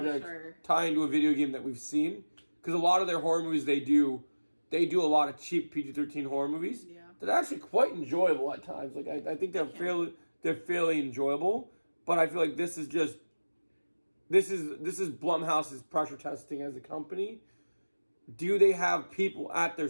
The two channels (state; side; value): inverted; both; correlation -1.00